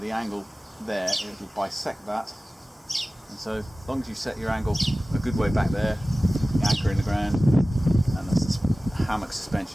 angle there, it'll bisect that, and so as long as you set your angle a good way back there, the anchor in the ground and the hammock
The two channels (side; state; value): both; normal; correlation 0.97